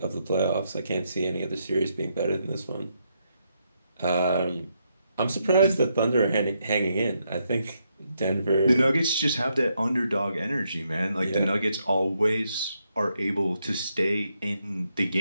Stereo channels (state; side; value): inverted; both; correlation -0.79